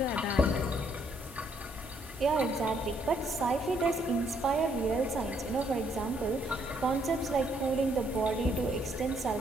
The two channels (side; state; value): both; normal; correlation 0.70